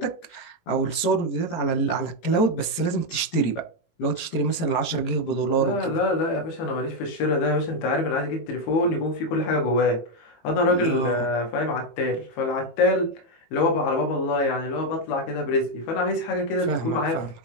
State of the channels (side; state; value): right; late; 18 ms